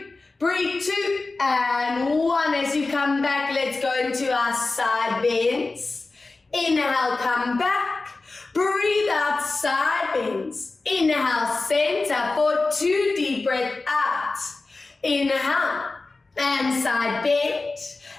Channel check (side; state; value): right; quieter; 3.5 dB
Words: Breathe 2 and 1. As you come back, let's go into our side bends. Inhale, come back. Breathe out, side bends. Inhale, center for 2. Deep breath out. Inhale, and side bend.